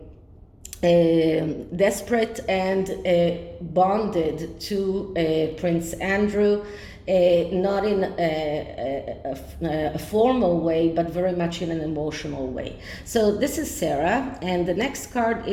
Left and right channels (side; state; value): both; identical; correlation 1.00